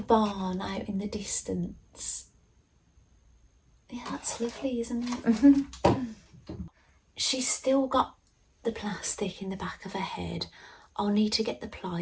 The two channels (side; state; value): both; identical; correlation 1.00